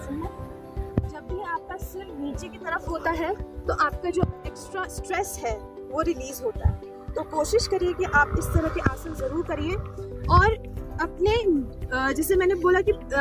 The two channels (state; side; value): identical; both; correlation 1.00